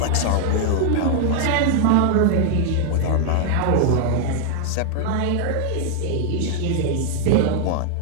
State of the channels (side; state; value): both; different; correlation -0.01